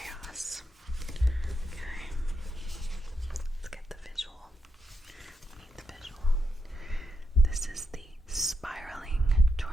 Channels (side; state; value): both; normal; correlation 0.82